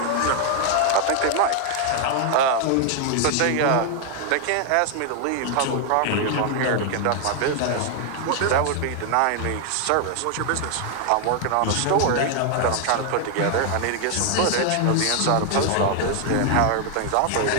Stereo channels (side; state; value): both; different; correlation 0.00